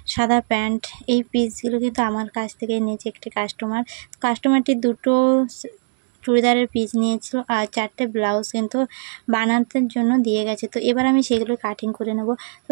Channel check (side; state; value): left; silent; digital silence